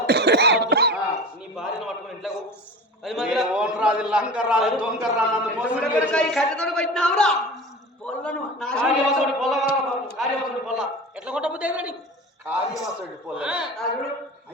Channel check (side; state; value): both; normal; correlation 0.34